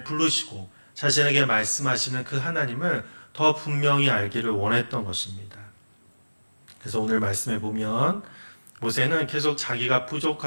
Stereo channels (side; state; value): both; inverted; correlation -1.00